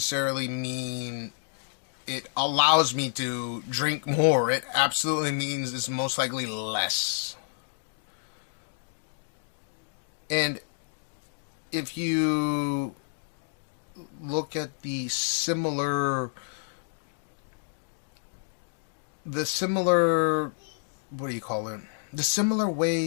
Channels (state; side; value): silent; right; digital silence